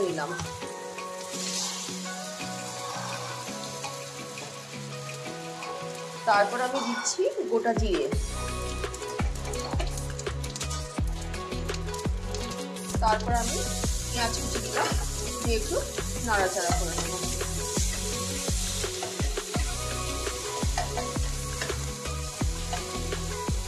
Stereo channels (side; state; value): both; identical; correlation 1.00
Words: নিলাম। তারপর আমি দিচ্ছি গোটা জিরে, তারপর আমি পেঁয়াজ কুচি দিলাম, দিয়ে একটু নাড়াচাড়া করে নেব।